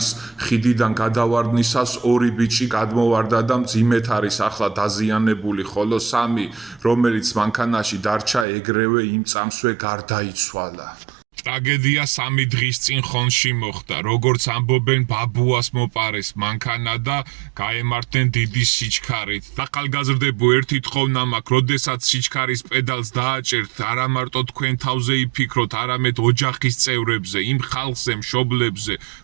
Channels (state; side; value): drops out; left; at 8.5 s